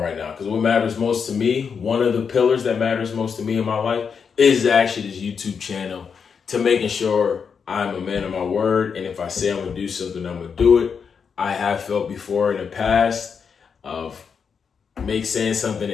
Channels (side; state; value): right; quieter; 6.3 dB